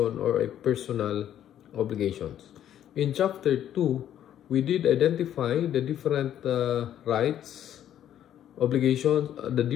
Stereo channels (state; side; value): quieter; right; 10.8 dB